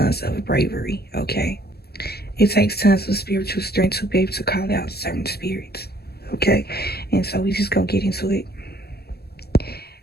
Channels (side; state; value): right; late; 0.46 ms